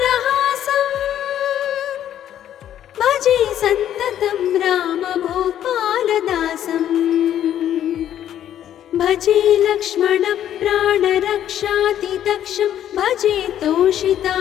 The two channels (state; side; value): quieter; right; 10.9 dB